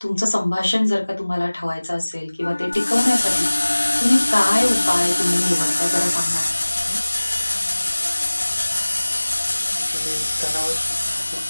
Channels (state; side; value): inverted; both; correlation -1.00